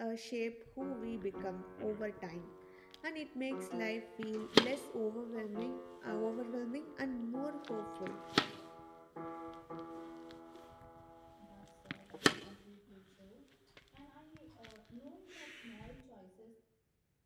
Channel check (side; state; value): both; identical; correlation 1.00